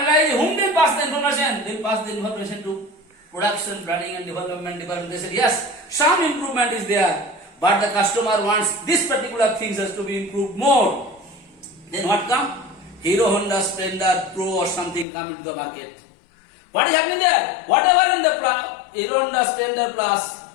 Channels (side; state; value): right; drops out; at 15.1 s